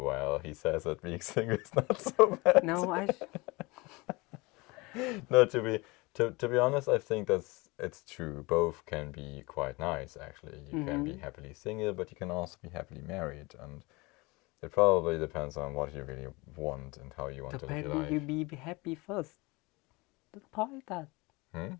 he says that being single is not so bad. No, No, to be honest, I think it's true. Both can be quite nice, actually. You can be happily single, but you can also be happily married, and it probably depends on what you really want and how you want to live your depending you life. be happy first. The point is that Hmm?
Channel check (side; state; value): right; quieter; 24.4 dB